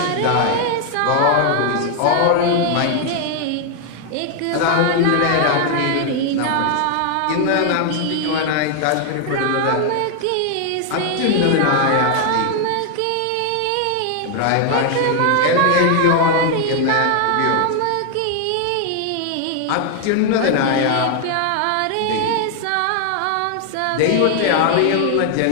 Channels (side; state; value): both; different; correlation 0.00